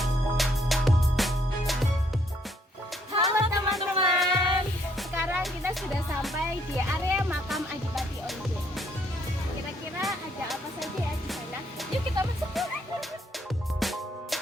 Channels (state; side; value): normal; both; correlation 0.68